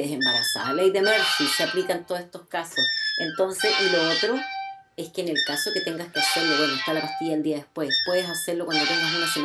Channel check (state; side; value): identical; both; correlation 1.00